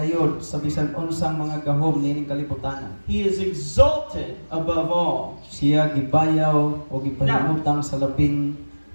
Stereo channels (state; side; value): inverted; both; correlation -1.00